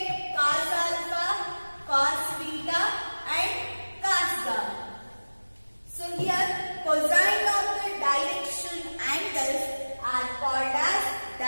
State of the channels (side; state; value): both; inverted; correlation -1.00